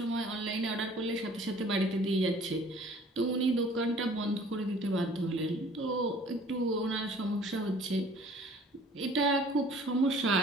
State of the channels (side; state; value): both; normal; correlation 0.52